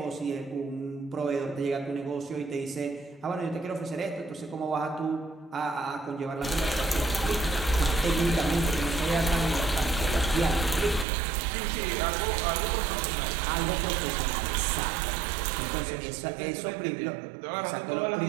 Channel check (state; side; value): drops out; left; at 11.1 s